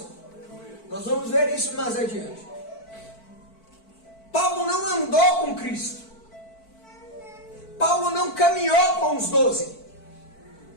Nós vamos ver isso mais adiante. Paulo não andou com Cristo. Paulo não caminhou com os 12.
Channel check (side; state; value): right; late; 4.5 ms